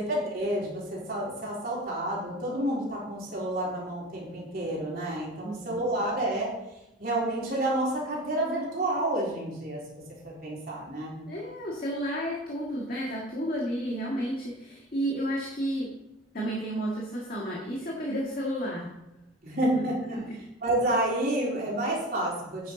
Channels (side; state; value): both; normal; correlation 0.33